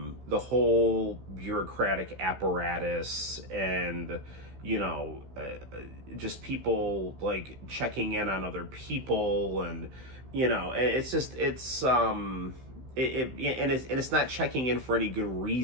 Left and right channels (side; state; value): left; late; 15 ms